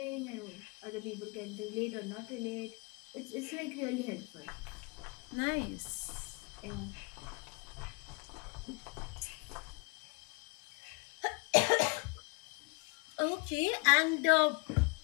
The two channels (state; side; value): quieter; right; 31.3 dB